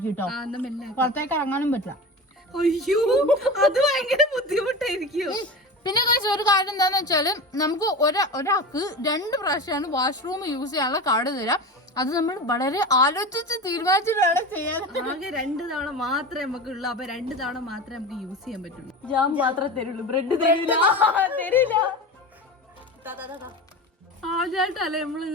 കേട്ടോ. പുറത്തേക്ക് ഇറങ്ങാനും പറ്റില്ല. അയ്യോ, അത് ഭയങ്കര ബുദ്ധിമുട്ടായിരിക്കും. പിന്നെ ഒരു കാര്യം എന്താന്ന് വെച്ചാല് നമുക്ക് ഒരാൾക്ക് 2 പ്രാവശ്യമാണ് വാഷ്റൂം യൂസ് ചെയ്യാനുള്ള കാർഡ് തരാം. അത് നമ്മൾ വളരെ ആലോചിച്ച് തീരുമാനിച്ചിട്ടാണ് ചെയ്യാൻ. ആകെ 2 തവണ മാത്രമേ നമുക്ക് ഉള്ളൂ. അപ്പൊ 2 തവണ മാത്രമേ നമുക്ക് യൂസ് ചെയ്യാൻ പറ്റുള്ളൂ. ജാം മാത്രമേ തരുള്ളൂ, ബ്രെഡ് തരില്ല. ആദ്യമായിട്ടല്ലേ നമ്മൾ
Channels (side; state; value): both; normal; correlation 0.29